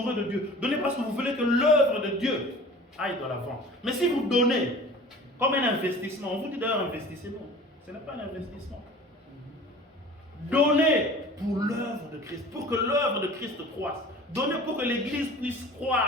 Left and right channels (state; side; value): normal; both; correlation 0.43